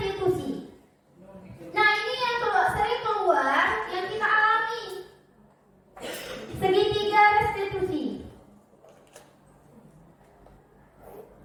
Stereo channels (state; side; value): identical; both; correlation 1.00